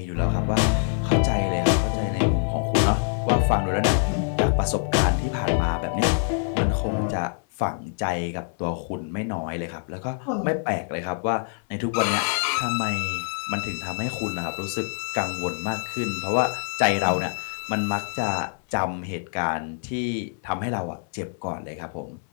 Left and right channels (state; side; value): silent; right; 58 dB below the other